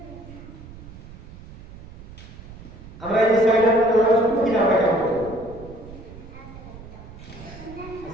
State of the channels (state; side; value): noise; right; rumble, 16 dB below the sound